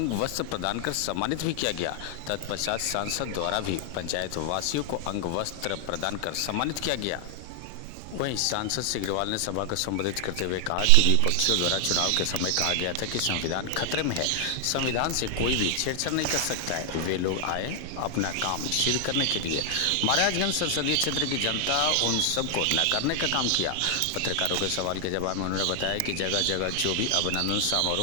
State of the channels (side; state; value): both; different; correlation 0.00